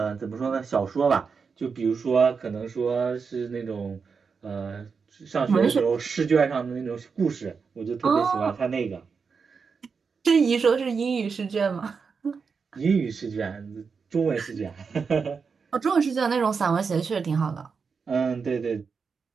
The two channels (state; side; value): quieter; left; 5.5 dB